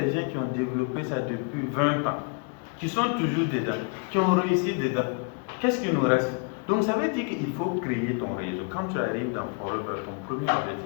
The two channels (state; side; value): quieter; right; 35.6 dB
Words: gens qui ont développé ça depuis 20 ans. qui sont toujours dedans, qui ont réussi dedans. Qu'est-ce qui nous reste? Donc ça veut dire qu'il faut créer ton réseau. Quand tu arrives dans Forever, ton premier